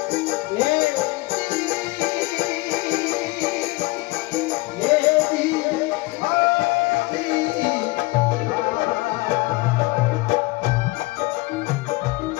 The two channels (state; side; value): quieter; right; 22.5 dB